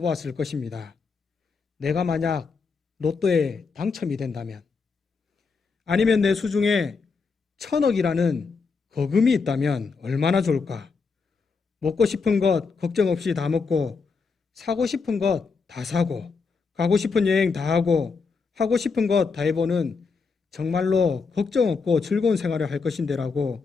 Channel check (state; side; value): quieter; right; 4.9 dB